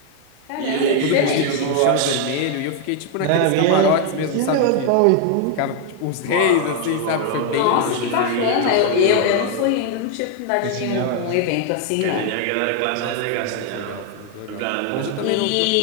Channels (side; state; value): both; different; correlation 0.00